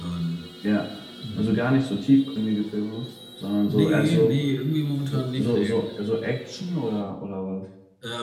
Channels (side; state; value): both; identical; correlation 1.00